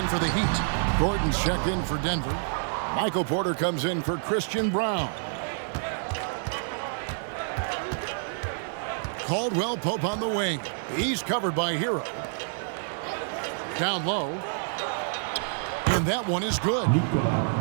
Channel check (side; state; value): left; silent; digital silence